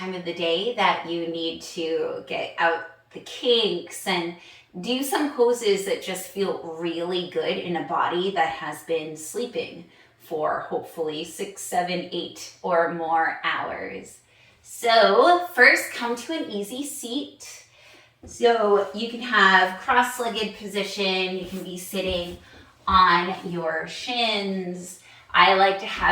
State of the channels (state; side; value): identical; both; correlation 1.00